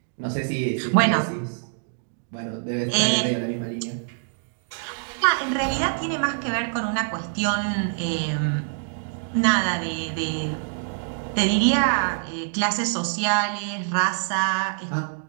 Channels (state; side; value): silent; left; digital silence